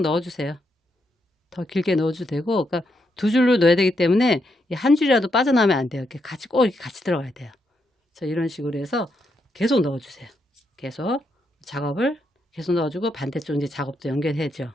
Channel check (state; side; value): normal; both; correlation 0.80